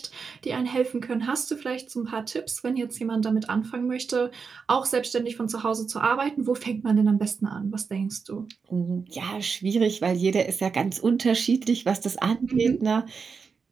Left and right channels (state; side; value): quieter; left; 5.4 dB